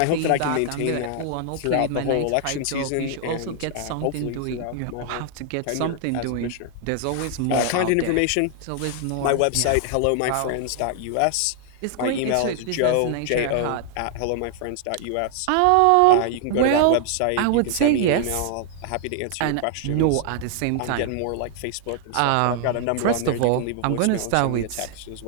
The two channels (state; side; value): different; both; correlation 0.00